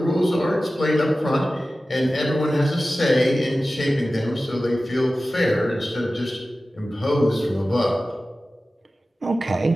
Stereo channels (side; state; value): both; normal; correlation 0.95